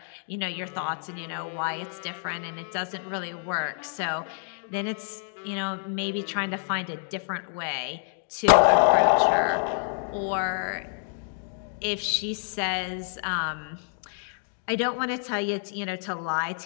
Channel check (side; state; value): right; silent; 59 dB below the other